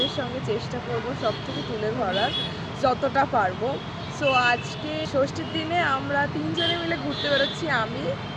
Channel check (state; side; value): identical; both; correlation 1.00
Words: সঙ্গে চেষ্টা করব সব থেকে তুলে ধরার যতটা পারবো। সো আজকে ষষ্ঠীর দিনে আমরা তিনজনে মিলে ঘুরতে বেরোচ্ছি, আমি,